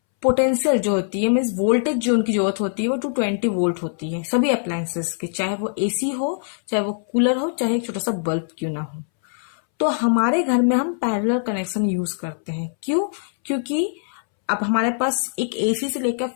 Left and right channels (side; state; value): right; silent; 64 dB below the other